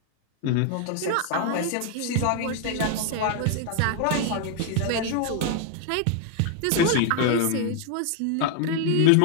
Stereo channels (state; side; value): different; both; correlation 0.00